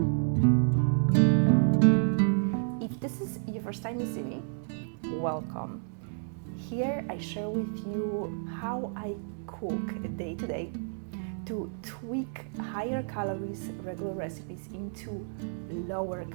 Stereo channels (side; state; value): left; silent; digital silence